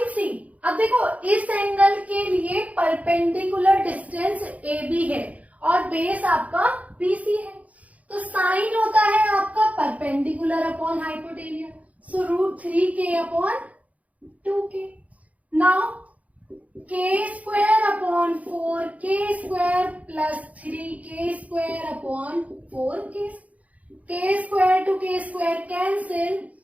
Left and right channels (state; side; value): late; left; 0.070 ms